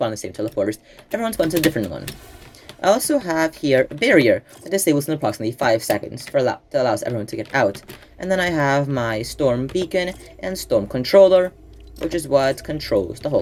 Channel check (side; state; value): both; identical; correlation 1.00